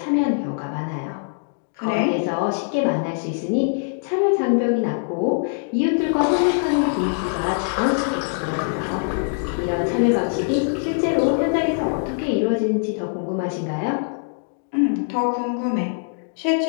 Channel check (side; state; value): right; silent; digital silence